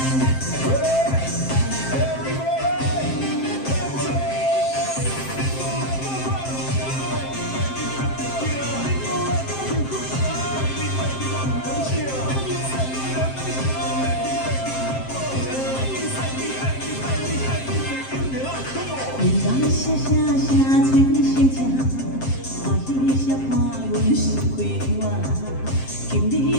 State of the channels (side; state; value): right; late; 7.6 ms